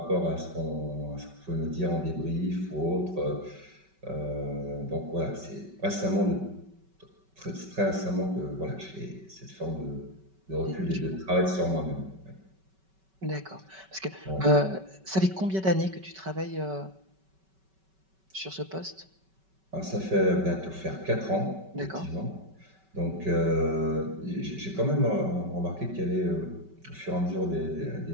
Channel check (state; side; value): late; left; 5.2 ms